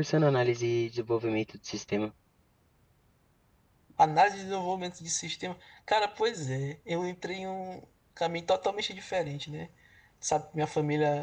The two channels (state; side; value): identical; both; correlation 1.00